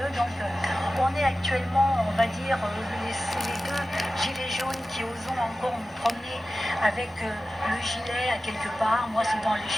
donc on est actuellement, on va dire, les deux gilets jaunes qui osent encore nous promener avec le gilet à quelque part, moi c'est dans les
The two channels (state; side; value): normal; both; correlation 0.95